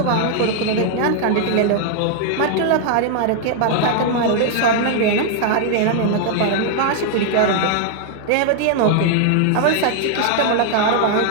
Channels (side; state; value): both; different; correlation 0.00